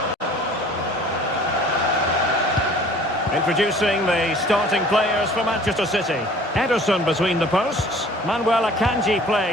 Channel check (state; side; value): normal; both; correlation 0.50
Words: Introducing the starting players for Manchester City. Ederson between the posts. Manuel Akanji